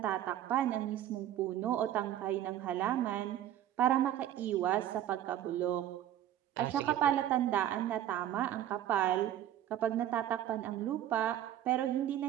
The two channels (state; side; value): quieter; left; 11.8 dB